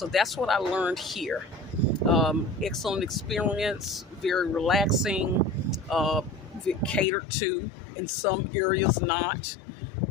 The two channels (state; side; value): drops out; right; at 7.1 s